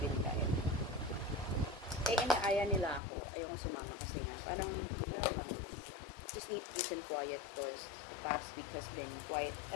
kahit. Eh, inaaya nila ako. Ayoko sumama kasi nga. Parang, lang, just need peace and quiet because the past week has been quite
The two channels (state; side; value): drops out; right; at 3.0 s